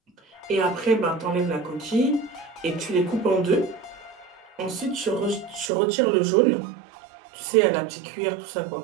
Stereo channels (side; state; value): left; drops out; at 5.7 s